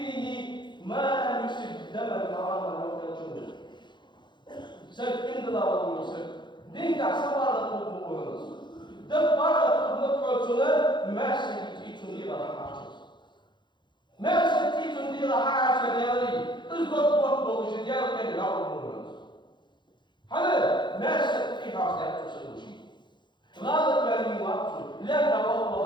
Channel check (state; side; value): late; right; 0.22 ms